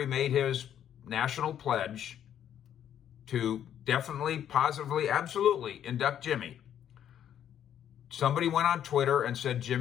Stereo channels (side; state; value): right; quieter; 10.0 dB